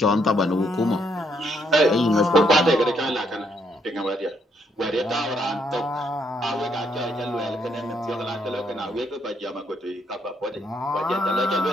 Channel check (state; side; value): normal; both; correlation 0.73